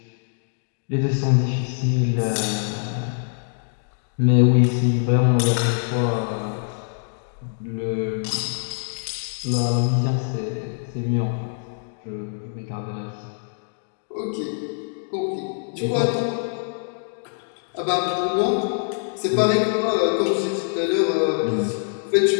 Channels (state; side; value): silent; right; digital silence